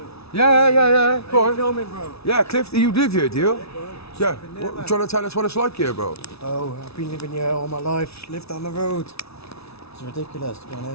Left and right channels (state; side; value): late; right; 0.79 ms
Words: Yeah. Go on. Filming, bro. Yeah, Cliff, you live here, do you? Yeah. been there, man. Trying to tell us what it's like here, bro? Oh, I've been living here all my life, lived on the road. It's ridiculous, to be